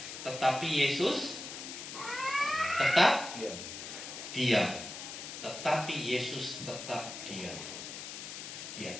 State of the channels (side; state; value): left; noise; hiss, 9 dB below the sound